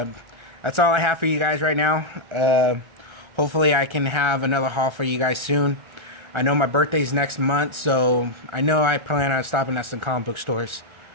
that's all I have for you guys right now. Hopefully I can have another haul for you guys soon. I know my birthday's next month, so I know I plan on stopping at some comic book stores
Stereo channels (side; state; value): left; late; 1.3 ms